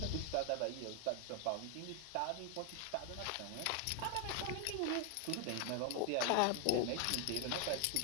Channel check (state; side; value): different; both; correlation 0.00